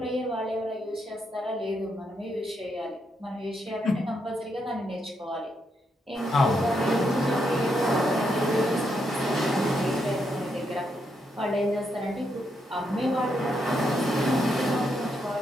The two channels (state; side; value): normal; both; correlation 0.79